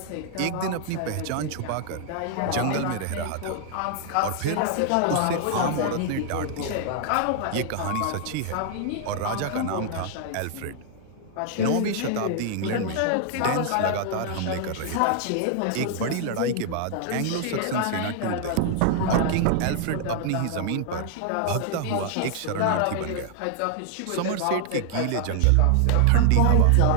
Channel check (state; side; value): different; both; correlation 0.00